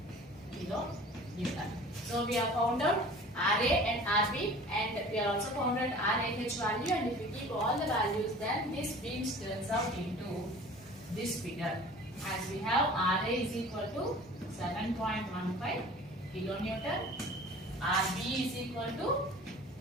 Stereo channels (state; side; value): normal; both; correlation 0.44